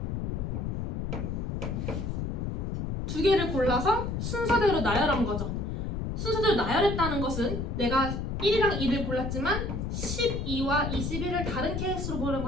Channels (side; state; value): left; noise; rumble, 2 dB below the sound